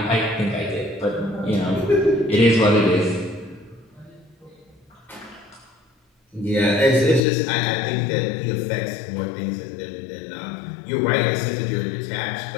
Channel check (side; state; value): right; drops out; at 7.2 s